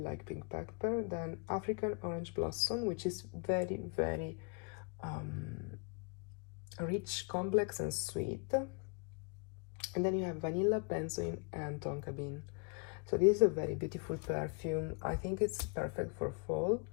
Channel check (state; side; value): quieter; right; 34.2 dB